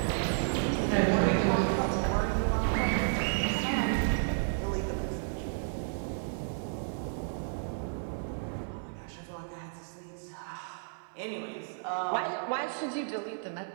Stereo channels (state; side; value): silent; left; digital silence